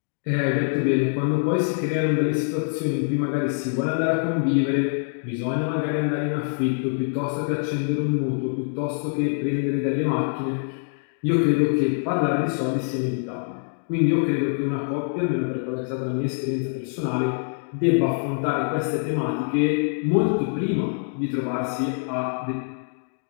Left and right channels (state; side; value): silent; right; 62 dB below the other